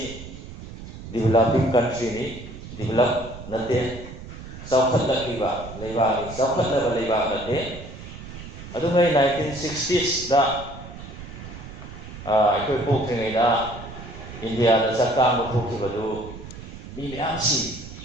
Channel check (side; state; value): right; noise; rumble, 13 dB below the sound